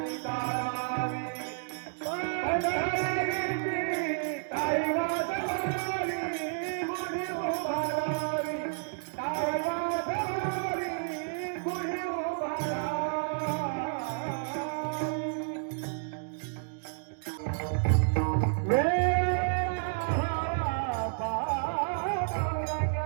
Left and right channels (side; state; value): left; silent; digital silence